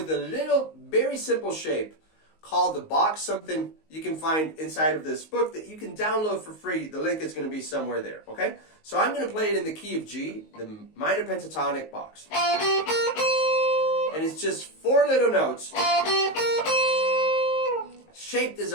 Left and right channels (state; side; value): late; right; 19 ms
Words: a little, very simple shape called the box, something you can find inside of this book that you can download for free. The link is going to be somewhere there, okay? So I'm going to play it in the key of G, the minor pentatonic box. And it's just 4 little notes, shaped as